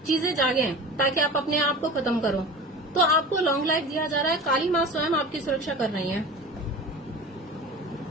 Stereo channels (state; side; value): normal; both; correlation 0.34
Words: चीजें जागे, ताकि आप अपने आप को खत्म करो, तो आपको लॉन्ग लाइफ दिया जा रहा है। काली माँ स्वयं आपकी सुरक्षा कर रही है।